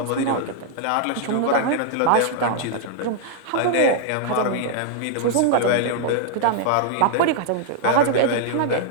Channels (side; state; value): both; different; correlation -0.01